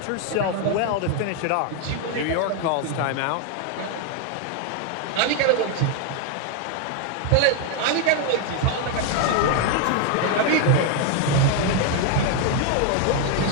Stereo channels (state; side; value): different; both; correlation 0.01